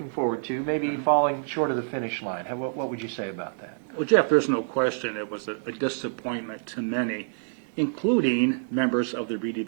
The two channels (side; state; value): left; silent; digital silence